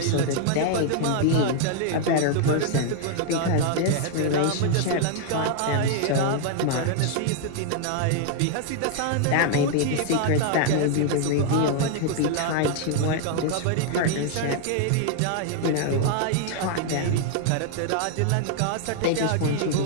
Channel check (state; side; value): different; both; correlation 0.00